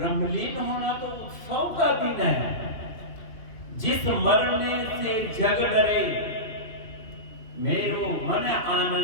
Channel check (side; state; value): right; late; 2.3 ms